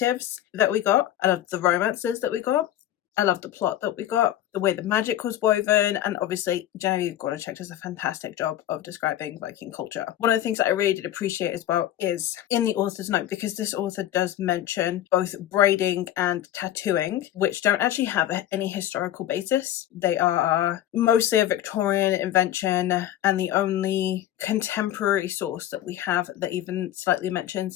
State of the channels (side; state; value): right; quieter; 12.5 dB